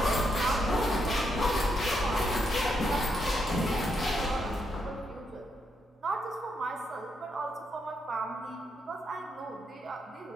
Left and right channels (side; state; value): both; normal; correlation 0.79